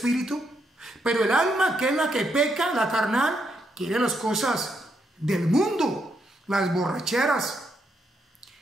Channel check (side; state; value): both; normal; correlation 0.78